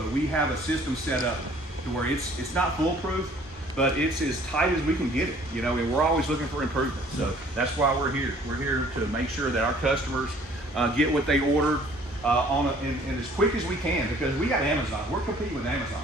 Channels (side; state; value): both; normal; correlation 0.55